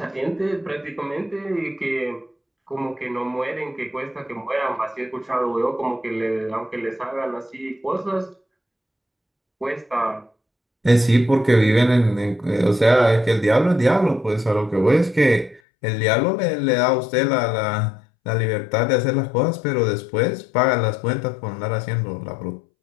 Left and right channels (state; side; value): drops out; right; at 15.6 s